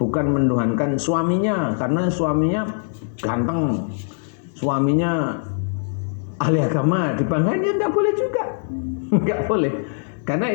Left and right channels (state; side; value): silent; right; digital silence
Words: Bukan menuhankan suaminya karena suaminya ganteng, suaminya ahli agama, dibanggain, ya nggak boleh juga. Nggak boleh, karena